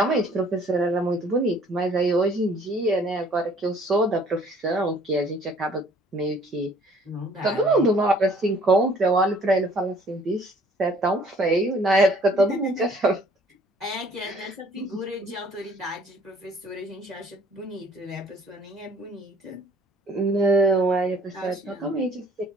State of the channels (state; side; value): normal; both; correlation 0.57